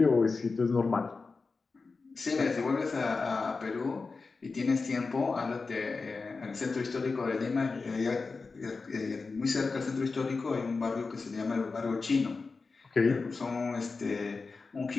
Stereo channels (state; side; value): quieter; right; 4.2 dB